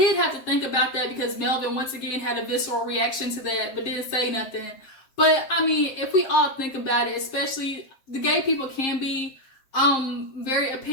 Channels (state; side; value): late; right; 7.6 ms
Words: have to think about that because Melvin, once again, had a visceral reaction to that, but didn't say nothing. But, if we all think about it, especially the gay people can be very